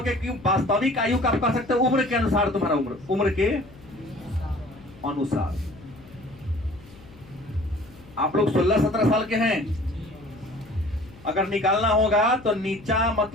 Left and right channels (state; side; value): noise; left; hum, 22 dB below the sound